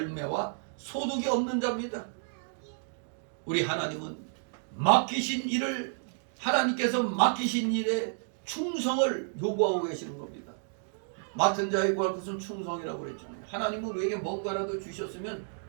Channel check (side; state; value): left; silent; digital silence